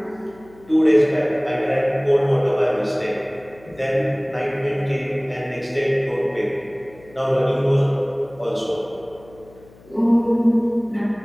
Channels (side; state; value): left; noise; hum, 25 dB below the sound